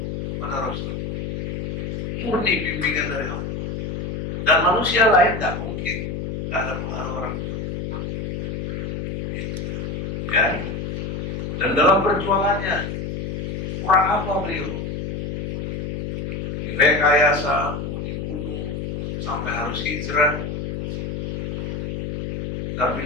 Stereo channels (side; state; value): left; noise; hum, 3 dB below the sound